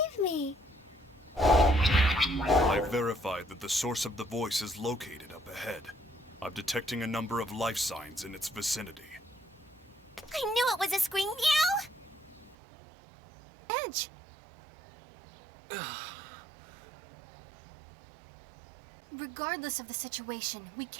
me! I've verified that the source of the voice is located up ahead. I'm detecting a number of life signs in its vicinity. I knew it was a scream. Meow! Edge! Regardless of the situation, we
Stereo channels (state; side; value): drops out; left; at 12.6 s